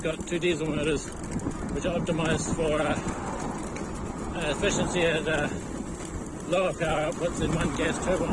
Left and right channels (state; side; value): identical; both; correlation 1.00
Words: got two diesel motors, which are optimized for efficiency at lower power outputs than one gas